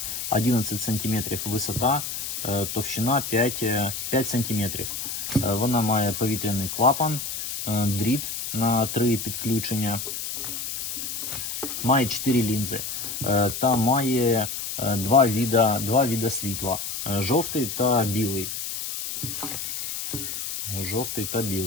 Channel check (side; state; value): left; noise; hiss, 5 dB below the sound